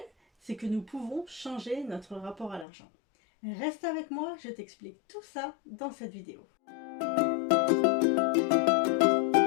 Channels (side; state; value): right; drops out; at 2.7 s